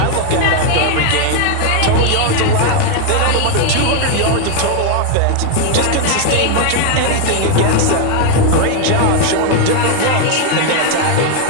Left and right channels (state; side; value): different; both; correlation 0.01